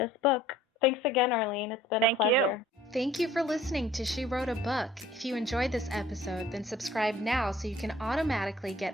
book. Thanks again, Arlene. It's been a pleasure. Thank you for listening to She Wrote a Book. If you enjoyed this episode, then subscribe now so you can automatically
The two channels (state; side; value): normal; both; correlation 0.53